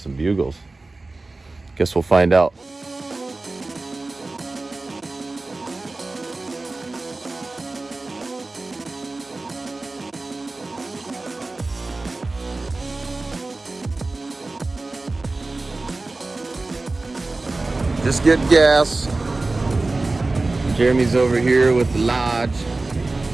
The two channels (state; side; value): quieter; left; 3.3 dB